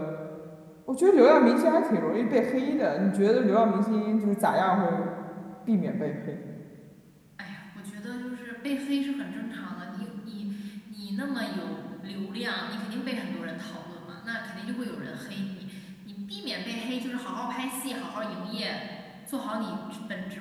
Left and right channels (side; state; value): both; identical; correlation 1.00